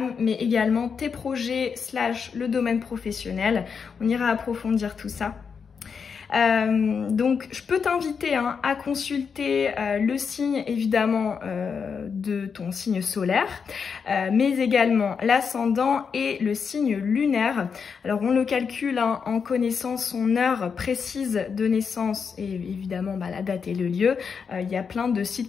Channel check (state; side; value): quieter; right; 6.1 dB